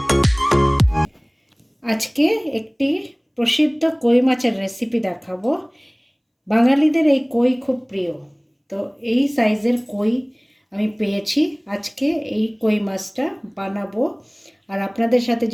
একটি প্রসিদ্ধ কই মাছের রেসিপি দেখাবো। বাঙালিদের এই কই খুব প্রিয়, তো এই সাইজের কই আমি পেয়েছি। আজকে এই কই মাছটা বানাবো আর আপনাদের সাথে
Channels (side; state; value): both; identical; correlation 1.00